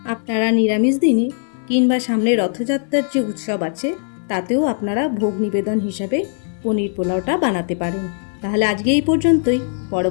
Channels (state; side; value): silent; right; digital silence